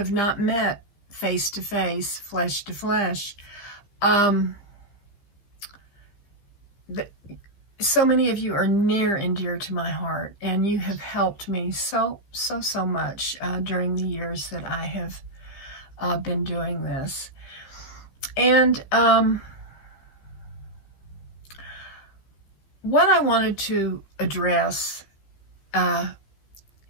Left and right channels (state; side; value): late; right; 15 ms